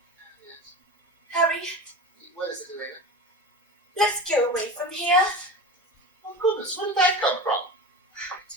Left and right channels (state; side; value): normal; both; correlation 0.28